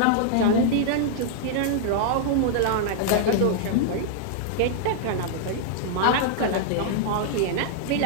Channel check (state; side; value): different; both; correlation -0.01